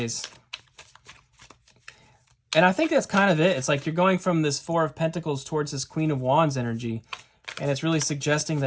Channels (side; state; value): both; identical; correlation 1.00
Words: And I think that's kind of it. It's like you're going from this 4 of Pentacles towards this Queen of Wands energy, and it's really suggesting